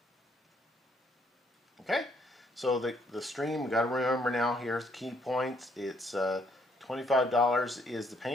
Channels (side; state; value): both; normal; correlation 0.69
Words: Okay, so the stream, we got to remember now, here's the key points. It's $25 is the